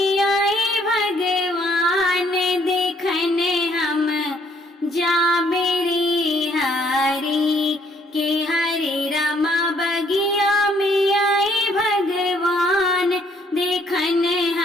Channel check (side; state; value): both; normal; correlation 0.66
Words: आए भगवान देखने हम जा मेरी हरी के हरे रामा बगिया में आए भगवान देखने